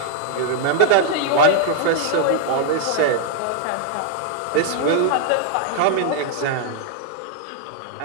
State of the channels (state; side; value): different; both; correlation 0.00